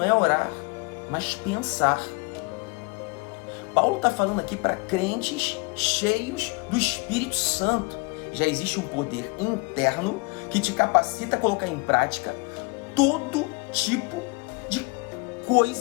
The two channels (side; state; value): right; quieter; 27.8 dB